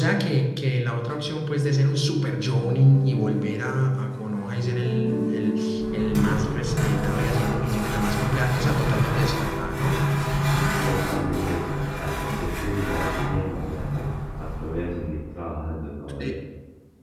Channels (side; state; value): both; identical; correlation 1.00